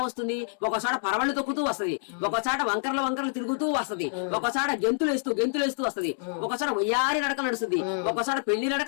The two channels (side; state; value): right; silent; 60 dB below the other